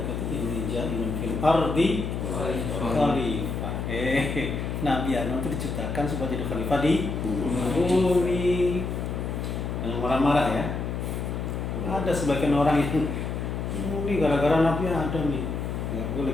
inni ja'ilun fil ardi khalifah. Nabi Adam itu diciptakan supaya jadi khalifah di bumi. Jangan marah-marah ya. Ada sebagian orang yang ini gara-gara Nabi Adam nih. Enggak boleh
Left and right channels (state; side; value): noise; left; hum, 3 dB below the sound